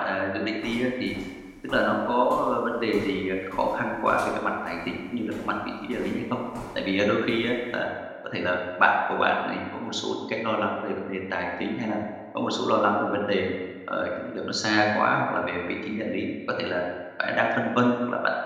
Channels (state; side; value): identical; both; correlation 1.00